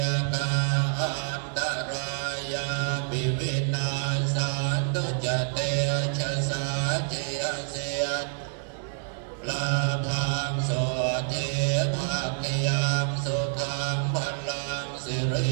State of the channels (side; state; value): left; silent; 60 dB below the other